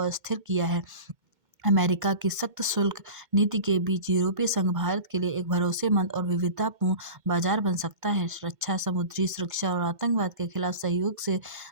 अस्थिर किया है। अमेरिका की सख्त शुल्क नीति के बीच यूरोपीय संघ भारत के लिए एक भरोसेमंद और विविधतापूर्ण बाजार बन सकता है। रक्षा, समुद्री सुरक्षा और आतंकवाद के खिलाफ सहयोग से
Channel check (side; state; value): left; late; 2.1 ms